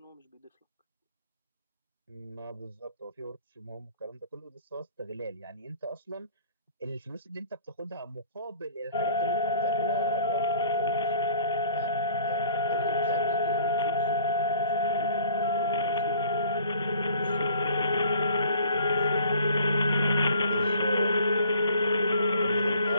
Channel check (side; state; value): both; inverted; correlation -0.53